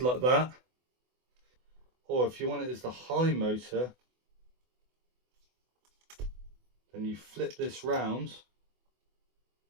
that, or if you want it as the high motor, then you flip this round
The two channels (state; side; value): late; left; 24 ms